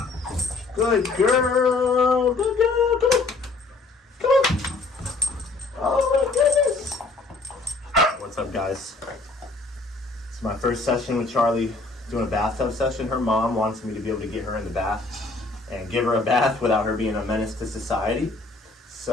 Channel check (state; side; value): quieter; right; 3.5 dB